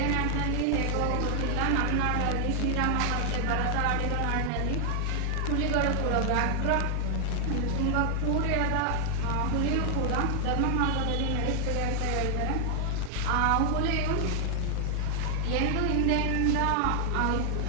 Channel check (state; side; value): different; both; correlation 0.00